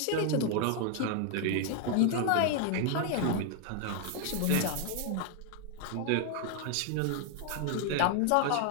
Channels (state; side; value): different; both; correlation 0.00